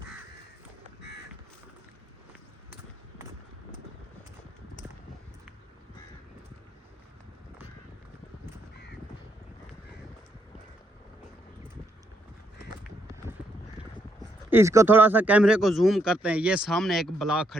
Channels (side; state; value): both; normal; correlation 0.76